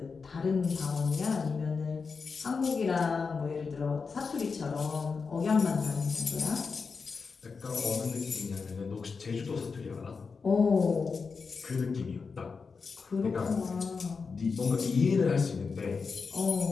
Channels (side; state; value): right; quieter; 5.0 dB